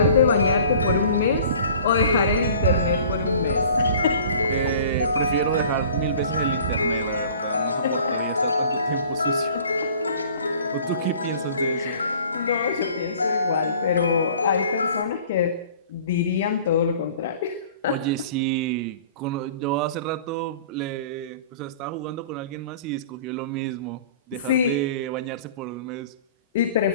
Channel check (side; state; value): both; inverted; correlation -0.48